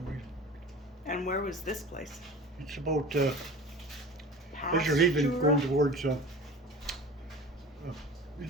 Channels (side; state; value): both; normal; correlation 0.38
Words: reason. And where was this place? It's about, as you're leaving, going towards,